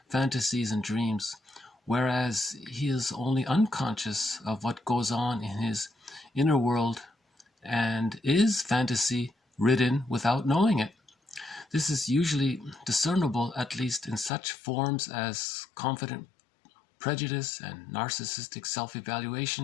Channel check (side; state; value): right; drops out; at 14.3 s